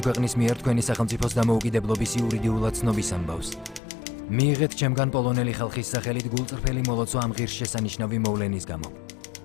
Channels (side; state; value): right; drops out; at 3.8 s